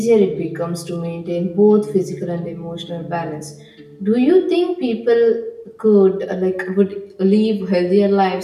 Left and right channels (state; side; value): identical; both; correlation 1.00